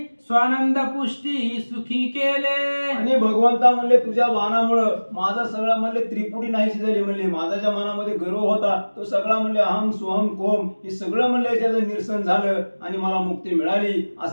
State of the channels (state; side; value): inverted; both; correlation -1.00